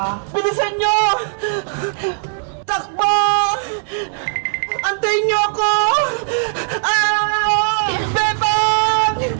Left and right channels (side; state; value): left; silent; digital silence